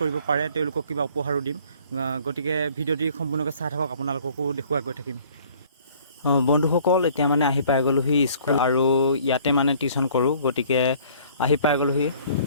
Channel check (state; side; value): inverted; both; correlation -0.55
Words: পাৰে তেওঁলোকক কিবা উপহাৰো দিম। গতিকে ভিডিঅ'টি সম্পূৰ্ণকৈ চাই থাকক, আপোনালোককো দেখুৱাই গৈ থাকিম। বন্ধুসকল, এতিয়া মানে আহি পাই গ'লোহি স্কুল, আৰু ইয়াতে মানে টিউশ্যন কৰোঁ। গতিকে আহি পাই গ'লোহি,